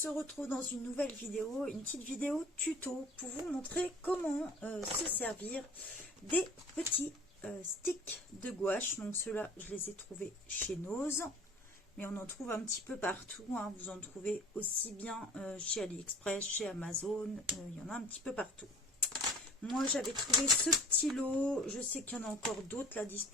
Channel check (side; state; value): both; normal; correlation 0.46